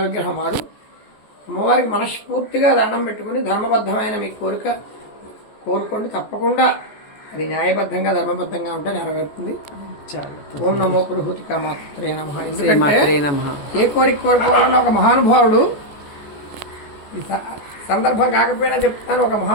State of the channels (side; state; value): right; late; 14 ms